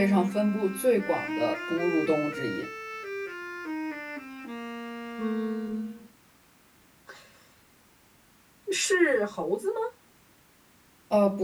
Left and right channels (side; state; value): both; identical; correlation 1.00